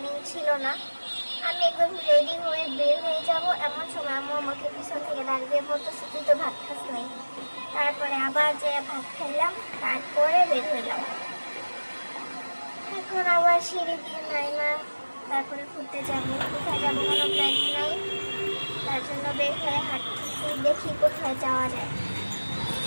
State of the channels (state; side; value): inverted; both; correlation -1.00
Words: ছিল না। আমি একদম রেডি হয়ে বের হয়ে যাব, এমন সময় আম্মু আমাকে পিছন থেকে দাঁড়িয়ে বলতেছে তুই তো ভাত খাস নাই। তারপরে আবার যে ভাত খাইলাম, তারপরে বের হইলাম। এখন আবার সিঁড়ি দিয়ে নাইমা তারপরে ঘুরতে যাব। কোথায় যাবো কোনো প্ল্যানিং নাই, তার জন্য বের হয়ে হাঁটতেছি, দেখি কোথায় যাওয়া যায়।